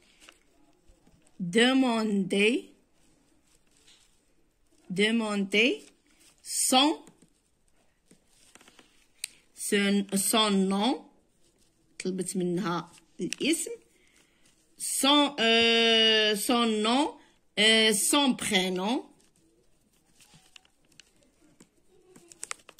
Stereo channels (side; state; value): both; identical; correlation 1.00